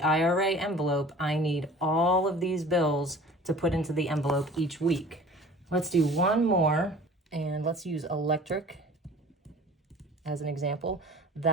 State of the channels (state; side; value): normal; both; correlation 0.45